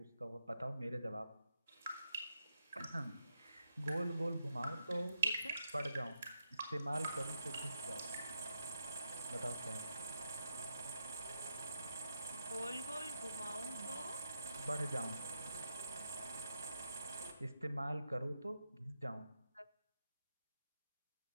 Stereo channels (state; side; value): inverted; both; correlation -0.83